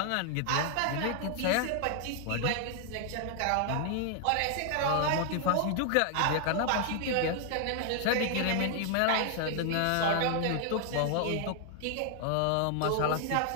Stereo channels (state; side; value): different; both; correlation 0.00